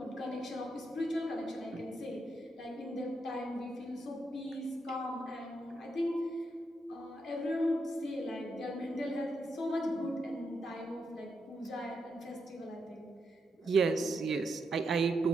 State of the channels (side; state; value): both; normal; correlation 0.82